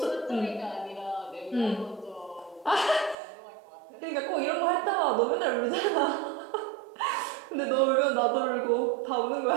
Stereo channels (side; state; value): left; drops out; at 3.2 s